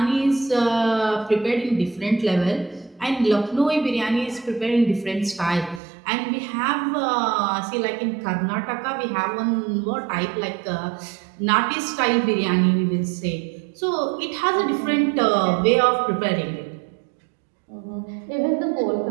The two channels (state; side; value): drops out; left; at 5.8 s